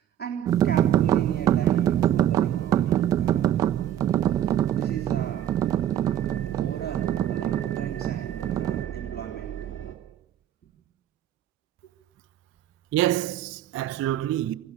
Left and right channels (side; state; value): left; quieter; 11.2 dB